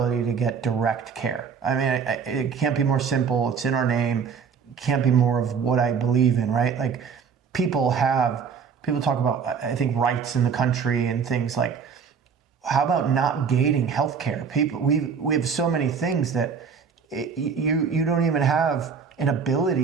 to get direct care. It can't be more simple. It's in our name. It can't be more of what I believe in, right? Like people talk about, I think, rights in the country and things like, how about not gating healthcare? We have so many things that you don't even have an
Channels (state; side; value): quieter; left; 6.3 dB